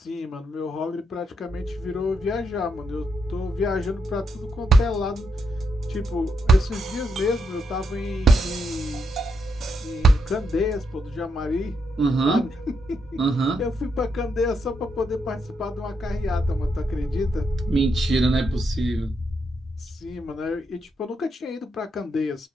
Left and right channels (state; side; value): normal; both; correlation 0.80